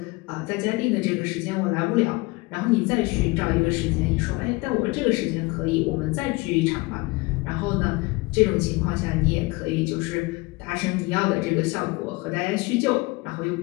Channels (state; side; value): quieter; right; 23.8 dB